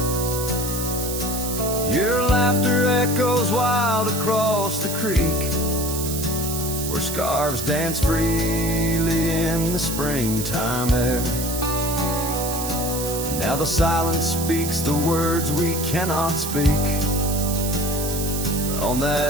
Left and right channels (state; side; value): noise; right; hiss, 5 dB below the sound